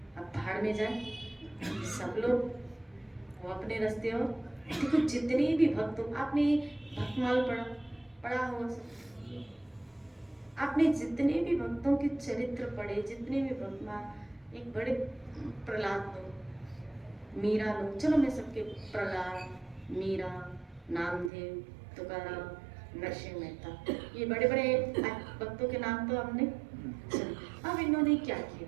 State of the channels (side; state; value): left; drops out; at 21.3 s